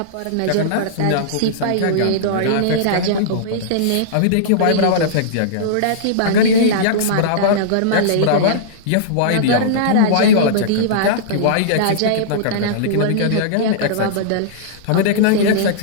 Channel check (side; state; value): both; different; correlation -0.03